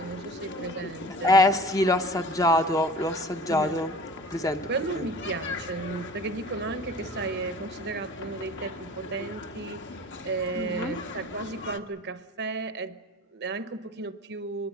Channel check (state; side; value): normal; both; correlation 0.43